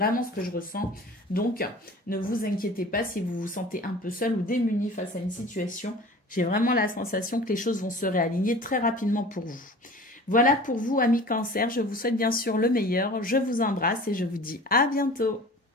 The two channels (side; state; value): both; normal; correlation 0.41